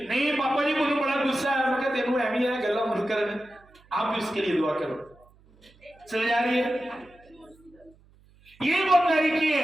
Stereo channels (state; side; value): noise; right; hum, 29 dB below the sound